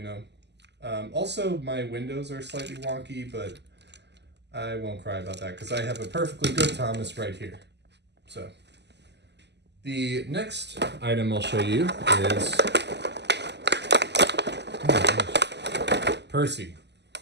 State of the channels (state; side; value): late; left; 0.50 ms